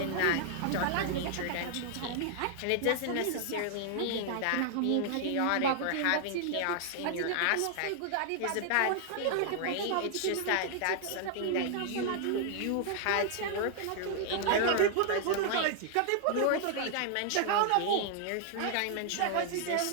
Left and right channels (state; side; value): different; both; correlation 0.00